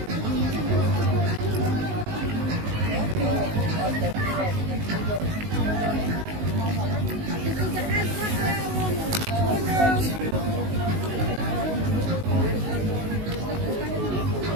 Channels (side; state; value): left; late; 19 ms